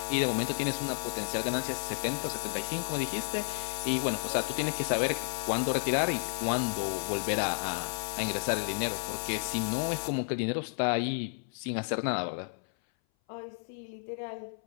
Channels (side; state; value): right; silent; 57 dB below the other